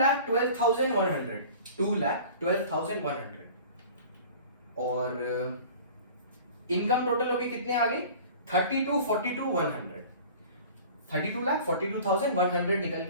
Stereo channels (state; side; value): inverted; both; correlation -0.43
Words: 2,12,100 और इनकम टोटल होगी कितने आ गई? 32,42,100। 32,42,100 निकल